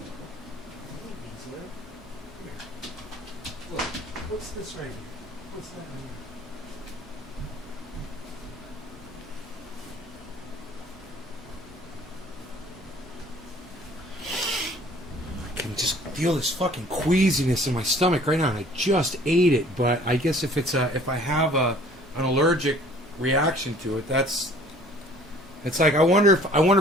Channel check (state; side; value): normal; both; correlation 0.53